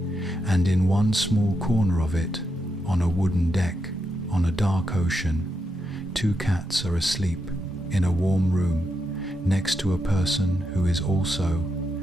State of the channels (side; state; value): both; normal; correlation 0.84